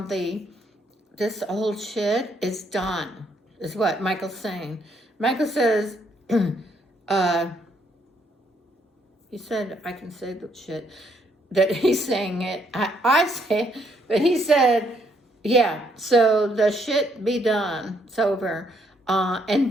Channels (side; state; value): both; normal; correlation 0.71